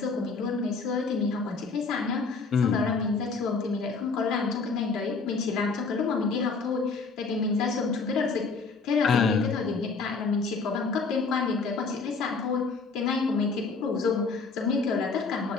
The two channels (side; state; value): right; quieter; 4.4 dB